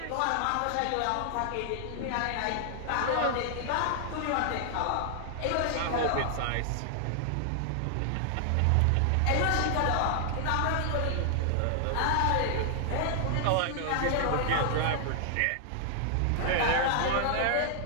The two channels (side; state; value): both; different; correlation 0.00